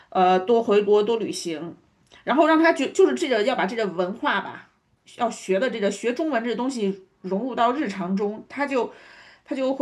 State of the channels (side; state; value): both; identical; correlation 1.00